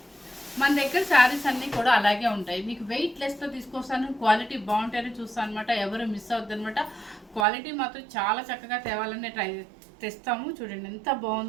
మన దగ్గర శారీస్ అన్నీ కూడా అలాగే ఉంటాయి. మీకు వెయిట్ లెస్తో తీసుకొస్తాను, క్వాలిటీ బాగుంటాయని చూస్తాను అనమాట. ఎవరు మిస్ అవుద్ది అనమాట. క్వాలిటీ మాత్రం చాలా చక్కగా తేవాలని తెస్తాము. చూడండి ఎంత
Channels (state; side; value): drops out; left; at 7.5 s